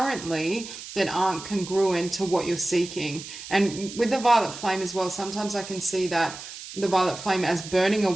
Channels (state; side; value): noise; right; hiss, 12 dB below the sound